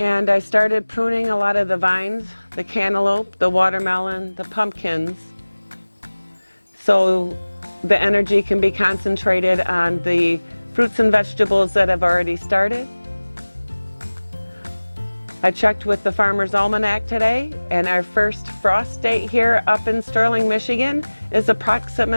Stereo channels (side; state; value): both; inverted; correlation -1.00